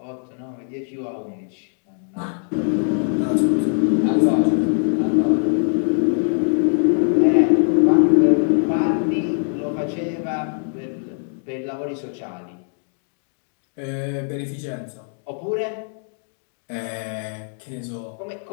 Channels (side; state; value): right; silent; digital silence